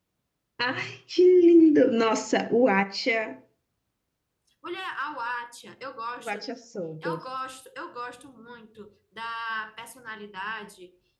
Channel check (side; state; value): both; identical; correlation 1.00